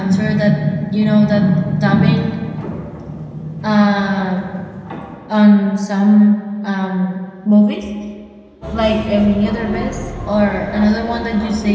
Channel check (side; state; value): both; identical; correlation 1.00